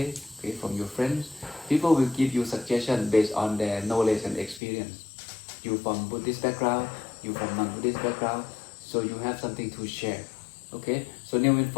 okay, from your friends. People will give you suggestions based on their knowledge and experience. You from Buddhist background, you from non-Buddhist background, so you have something to share. Okay, so new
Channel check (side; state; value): right; drops out; at 4.6 s